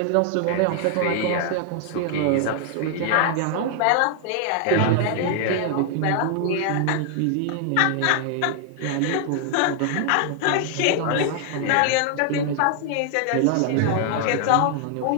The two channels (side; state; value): both; different; correlation 0.00